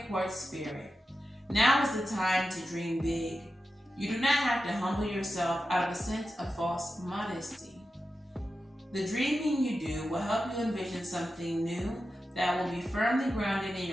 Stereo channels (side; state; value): both; normal; correlation 0.91